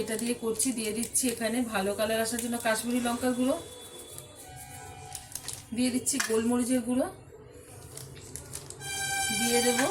দিয়ে করছি। দিয়ে দিচ্ছি এখানে ভালো কালার আসার জন্য কাশ্মীরি লঙ্কার গুঁড়ো, দিয়ে দিচ্ছি গোলমরিচের গুঁড়ো, দিয়ে দেব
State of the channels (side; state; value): both; identical; correlation 1.00